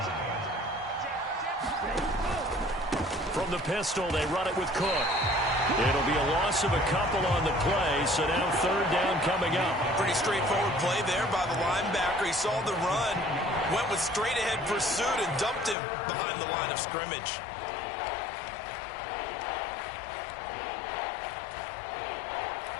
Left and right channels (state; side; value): drops out; right; at 15.8 s